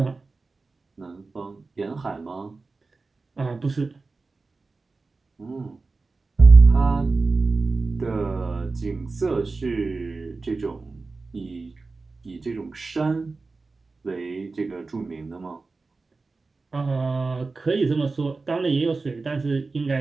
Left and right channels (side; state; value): left; quieter; 3.8 dB